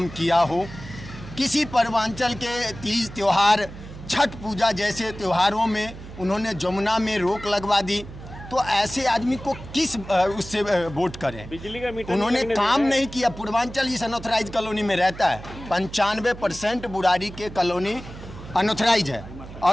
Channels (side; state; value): right; noise; hum, 14 dB below the sound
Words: किया हो, किसी पूर्वांचल के तीज त्यौहार, छठ पूजा जैसे त्योहारों में उन्होंने जमुना में रोक लगवा दी, तो ऐसे आदमी को किस उससे वोट करें? बिजली का मीटर उन्होंने नहीं काम लगने नहीं किया। पूर्वांचल इस अनऑथराइज कॉलोनी में रहता है, 95% बुराड़ी के कॉलोनी अनऑथराइज है